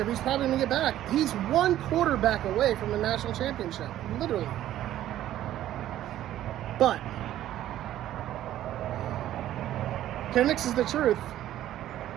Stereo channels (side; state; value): left; quieter; 12.8 dB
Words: He's probably going to get back. He's one quarterback away from the national championship, literally. But Penix is the truth.